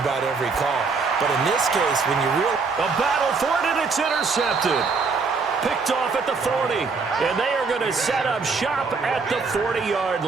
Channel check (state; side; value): quieter; left; 4.6 dB